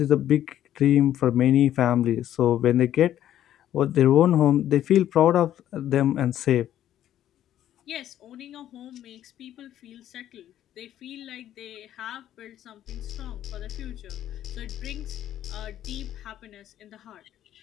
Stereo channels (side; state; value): right; quieter; 11.7 dB